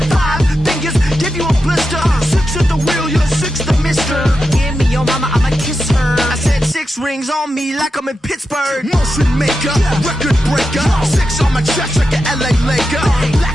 5 fingers, give you a blister. 6 at the wheel, you're 6 the mister. Give me your mama, I'ma kiss her. I said 6 rings on me like I'm in Pittsburgh. Motion maker, record breaker. 6 on my chest like an LA Laker.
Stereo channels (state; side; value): normal; both; correlation 0.89